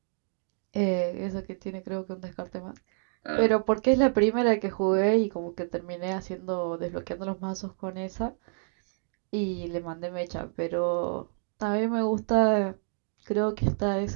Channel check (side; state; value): left; silent; 59 dB below the other